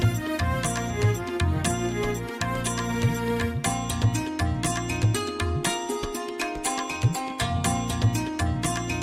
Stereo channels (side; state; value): both; identical; correlation 1.00